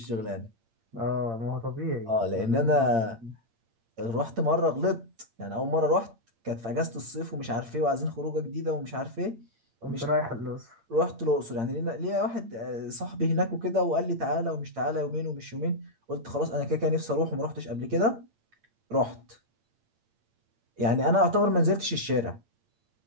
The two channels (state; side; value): late; left; 8.7 ms